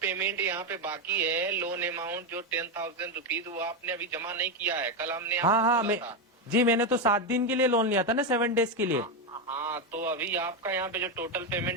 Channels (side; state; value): both; normal; correlation 0.08